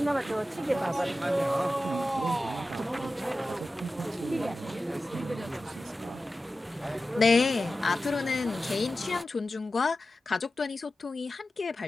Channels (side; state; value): both; normal; correlation 0.94